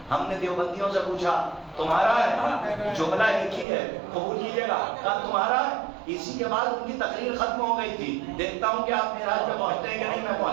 ہم نے دیوبندیوں سے پوچھا تمہارا ہے؟ جملہ ایک ہی ہے، قبول کیجیے گا. کہا تمہارا ہے. اسی کے بعد ان کی تقریر ختم ہو گئی تھی. دیکھتا ہوں کہ آپ معراج پہ پہنچتے ہیں کہ نہیں، میں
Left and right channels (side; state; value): left; drops out; at 3.7 s